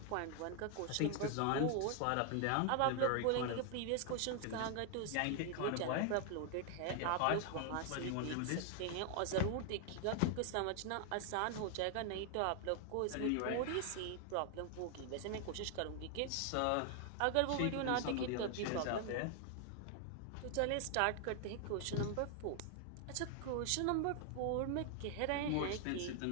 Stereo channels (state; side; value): different; both; correlation 0.00